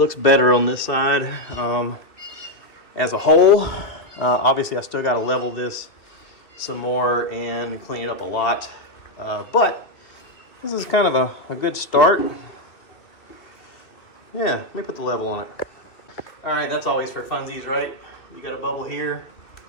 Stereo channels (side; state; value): right; late; 2.3 ms